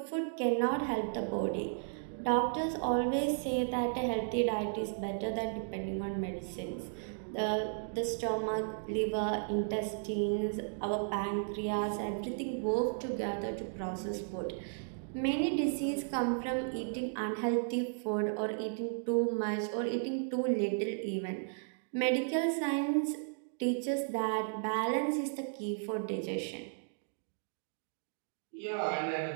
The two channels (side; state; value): left; silent; digital silence